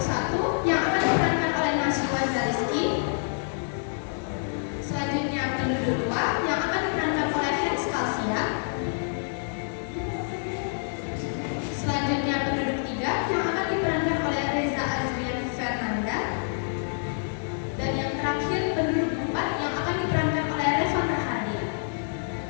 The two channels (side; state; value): right; silent; 60 dB below the other